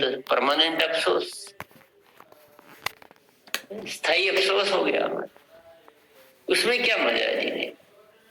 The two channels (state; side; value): identical; both; correlation 1.00